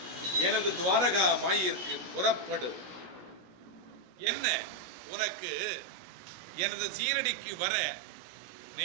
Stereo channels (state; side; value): late; left; 16 ms